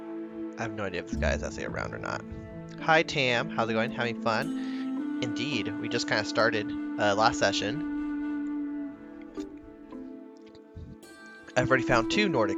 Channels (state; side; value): identical; both; correlation 1.00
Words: I have no idea if this guy is actually around or not. Hi Tam, how's it going? Having fun? Indeed, we just kind of started last session. I've already found 2